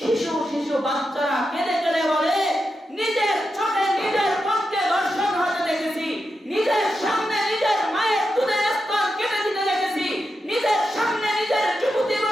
বাচ্চারা কেঁদে কেঁদে বলে নিজের চোখে নিজের পক্ষে দর্শন হতে দেখেছি, নিজের সামনে নিজের মায়ের দুধের স্তন কেটে দিতে দেখেছি, নিজের সামনে নিজের যুবতী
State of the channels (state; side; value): normal; both; correlation 0.88